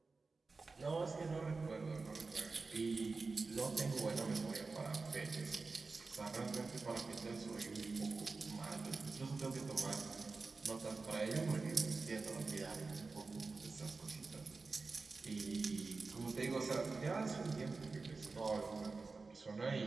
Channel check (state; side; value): quieter; left; 4.0 dB